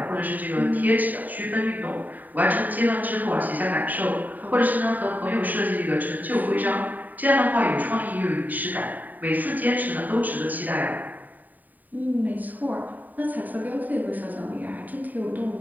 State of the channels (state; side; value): late; left; 0.085 ms